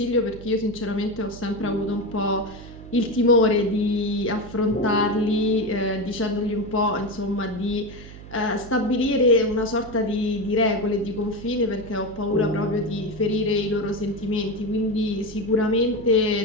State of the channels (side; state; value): right; noise; hum, 16 dB below the sound